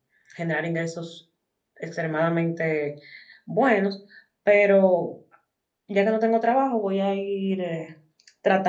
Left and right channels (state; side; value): identical; both; correlation 1.00